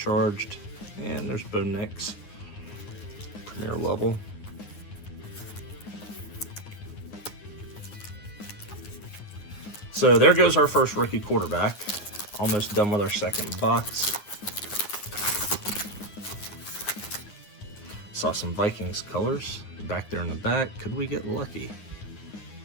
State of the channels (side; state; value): right; late; 9.6 ms